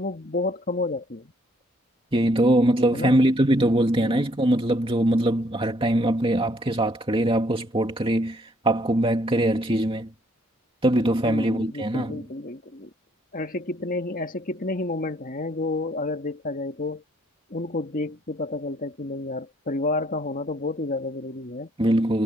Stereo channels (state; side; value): normal; both; correlation 0.67